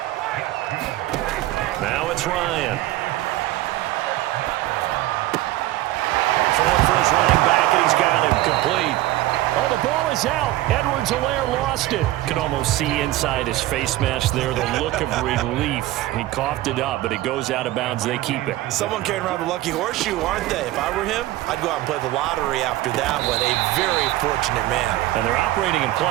Now it's Ryan. Throwing for his running back, and he's got him complete. Oh, the ball is out. Edwards-Helaire lost it. Could almost see inside his face mask there the look of relief. He coughed it up, but it goes out of bounds. They keep it. Someone carrying around the lucky horseshoe, aren't they? If I were him, I'd go out and play the lottery after that one. A very fortunate man. And they're operating in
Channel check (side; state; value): left; quieter; 16.2 dB